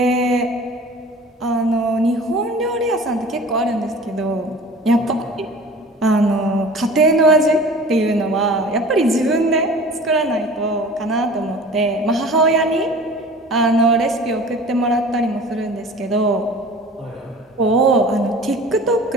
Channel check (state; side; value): normal; both; correlation 0.42